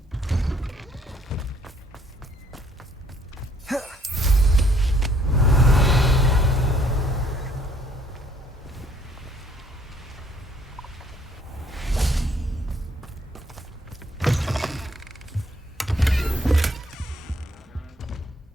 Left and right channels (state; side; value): normal; both; correlation 0.64